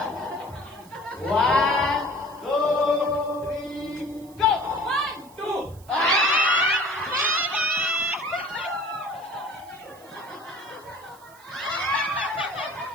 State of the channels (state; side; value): noise; right; hiss, 25 dB below the sound